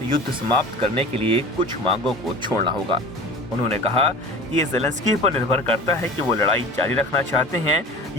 युद्ध समाप्त करने के लिए कुछ मांगों को छोड़ना होगा। उन्होंने कहा कि ये ज़ेलेंस्की पर निर्भर करता है कि वो लड़ाई जारी रखना चाहते हैं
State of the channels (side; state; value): both; normal; correlation 0.37